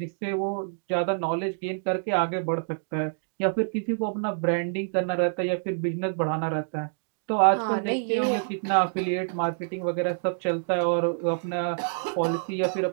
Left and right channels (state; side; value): silent; left; digital silence